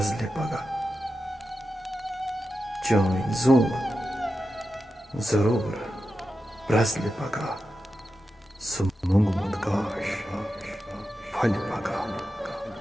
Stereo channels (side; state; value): both; normal; correlation 0.90